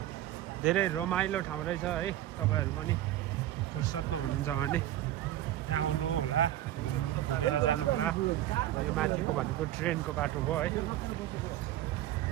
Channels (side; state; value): left; quieter; 13.3 dB